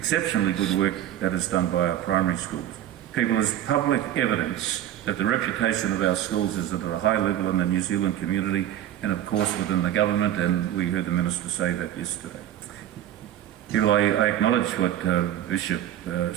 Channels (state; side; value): quieter; left; 11.7 dB